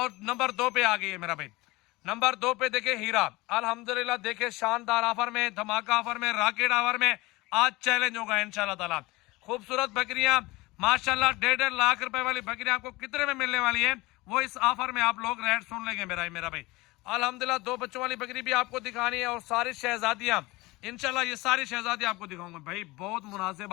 नंबर 2 पे आ गई है मेरा भाई। नंबर 2 पे देखे हीरा, अल्हम्दुलिल्लाह देखे शानदार ऑफर में, धमाका ऑफर में, रॉकेट ऑफर में, आज चैलेंज होगा इंशाल्लाह ताला। खूबसूरत बकरियां माशाल्लाह, 1.5 लाख रुपए वाली बकरियां आपको कितने में मिलने वाली है वो इस ऑफर में आप लोग रेट सुन लेंगे मेरा भाई। अल्हम्दुलिल्लाह 2 बच्चों वाली बकरी भी आपको दिखानी है, और सारी शहजादियां इंशाल्लाह, ये सारी शहजादियां आपको दिखाऊंगा भाई। बहुत मुनासिब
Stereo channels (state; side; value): quieter; right; 21.5 dB